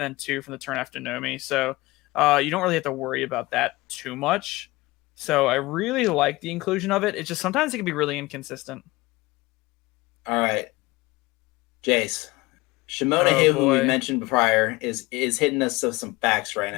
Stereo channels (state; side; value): quieter; right; 21.1 dB